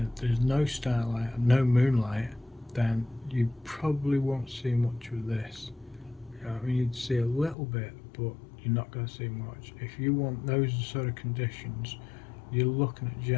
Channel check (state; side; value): drops out; right; at 7.6 s